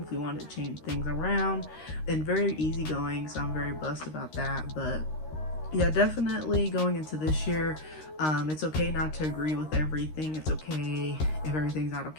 if we wanted to change things around, and very easygoing, so I'm very blessed about that. But yeah, definitely going into this year, it's okay not to agree with everything. It's okay if everything's not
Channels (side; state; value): right; late; 13 ms